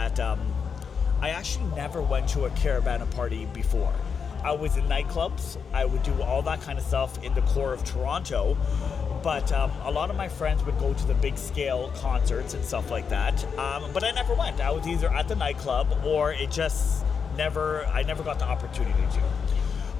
I actually never went to a caravana party before. I was in nightclubs. I would do all that kind of stuff in the core of Toronto, but a lot of my friends would go to the big scale concerts and stuff like that, but I never went. I was either at the nightclub or I never got the opportunity to.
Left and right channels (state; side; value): quieter; right; 6.2 dB